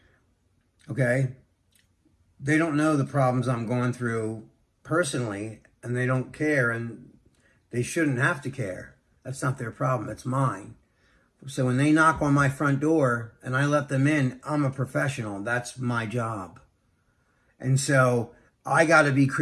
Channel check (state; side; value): identical; both; correlation 1.00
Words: Okay? They don't know the problems I'm going through personally, and they don't care, and they shouldn't have to care. That's not their problem. It's mine. So when they knock on my front door and I let them in, I'm a professional. That's my job. And so I got to be